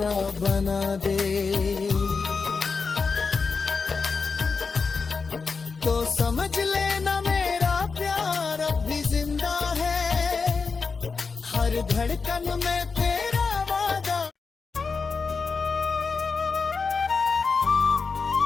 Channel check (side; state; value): right; quieter; 4.8 dB